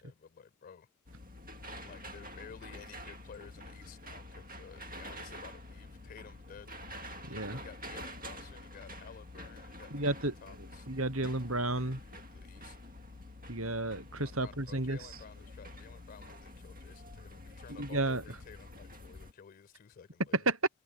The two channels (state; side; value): normal; both; correlation 0.05